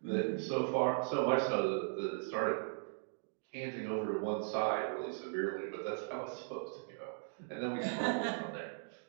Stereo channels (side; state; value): left; silent; digital silence